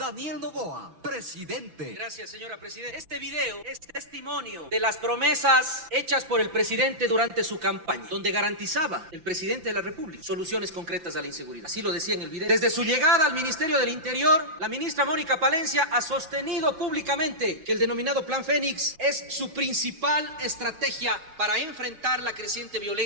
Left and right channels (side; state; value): left; late; 5.9 ms